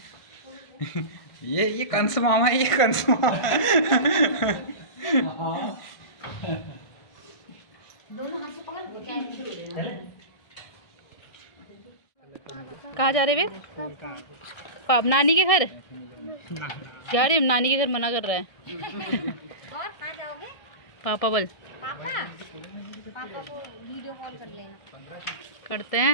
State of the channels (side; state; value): right; late; 1.3 ms